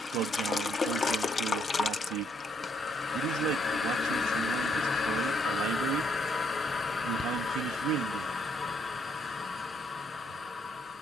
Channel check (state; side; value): normal; both; correlation 0.72